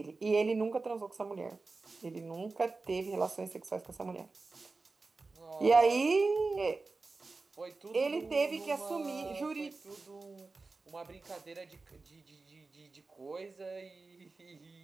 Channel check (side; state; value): left; quieter; 3.8 dB